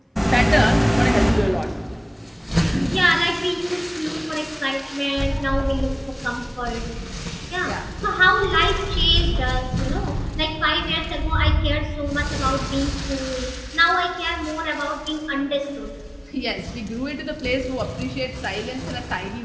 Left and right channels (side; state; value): both; identical; correlation 1.00